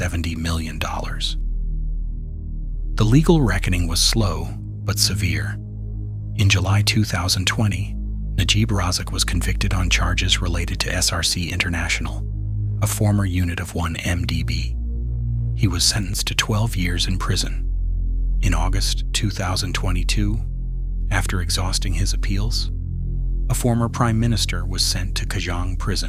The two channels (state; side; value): identical; both; correlation 1.00